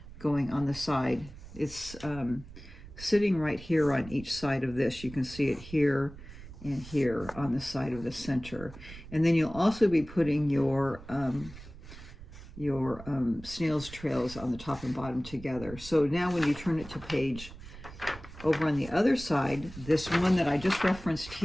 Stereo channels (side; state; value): right; noise; rumble, 15 dB below the sound